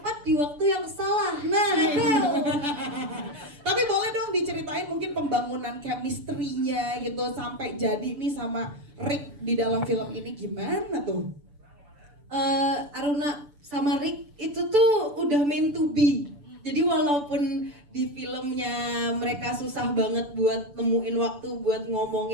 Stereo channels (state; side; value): late; left; 6.9 ms